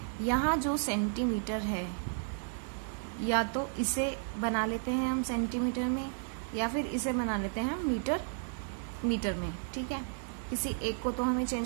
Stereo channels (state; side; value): silent; left; 56 dB below the other